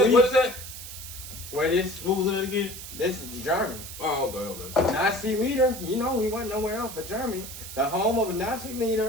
What is that? where this? What was that again? This is Germany. Oh, okay. Nazi leader, you know, he went nowhere else but Germany. The home of a Nazi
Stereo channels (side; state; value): right; noise; hiss, 11 dB below the sound